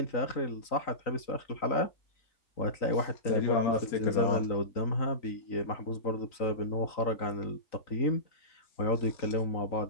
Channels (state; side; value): late; right; 3.9 ms